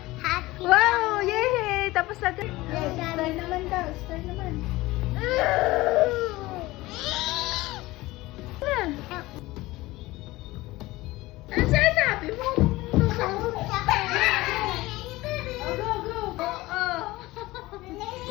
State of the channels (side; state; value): right; quieter; 19.3 dB